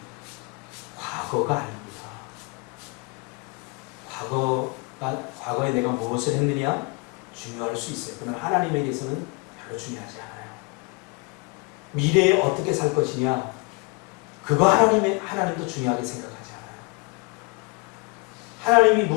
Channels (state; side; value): quieter; right; 29.5 dB